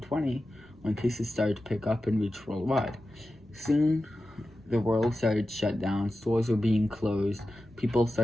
when cases started to pick up and reach worldwide. Soon, the world started to shut down, stores were being closed, people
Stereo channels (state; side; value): normal; both; correlation 0.93